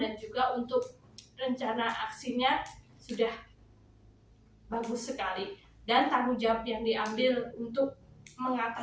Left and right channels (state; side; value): identical; both; correlation 1.00